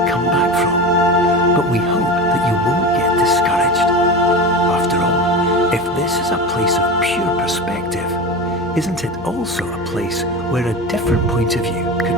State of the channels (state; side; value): noise; left; hum, 21 dB below the sound